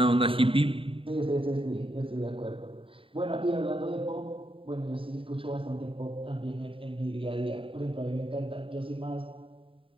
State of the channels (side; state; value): left; late; 0.26 ms